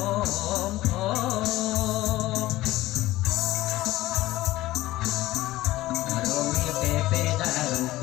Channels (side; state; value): right; quieter; 16.9 dB